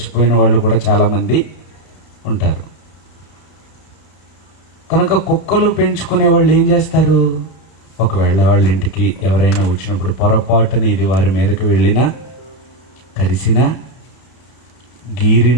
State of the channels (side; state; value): right; late; 31 ms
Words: వాళ్ళు కూడా చాలామంది ఉంటారు. కనుక కుక్కలు పెంచుకునే వాళ్ళు ఏం చేస్తారు? ఒకవేళ వాళ్ళ ఇంటికి ఎవరైనా వచ్చినప్పుడు పొరపాటున ఇది వారి మీదకి వెళ్ళినా, కరిసినా,